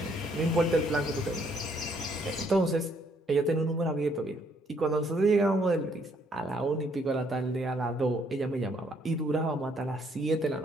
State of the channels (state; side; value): normal; both; correlation 0.68